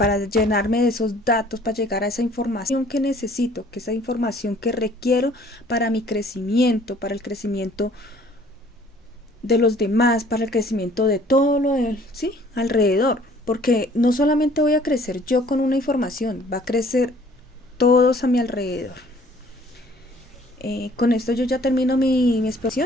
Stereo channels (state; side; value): normal; both; correlation 0.56